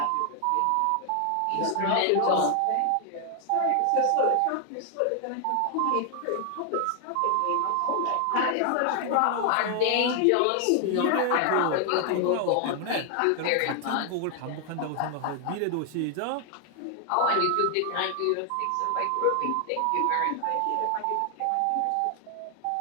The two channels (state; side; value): different; both; correlation 0.00